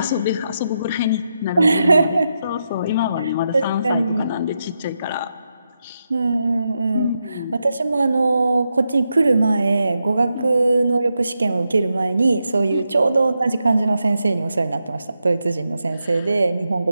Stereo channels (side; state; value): both; inverted; correlation -0.85